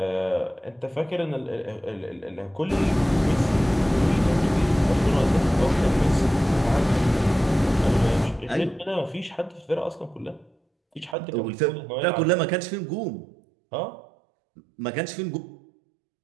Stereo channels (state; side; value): drops out; left; at 11.2 s